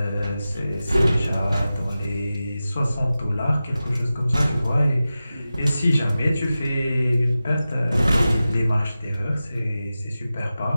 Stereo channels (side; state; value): both; inverted; correlation -0.94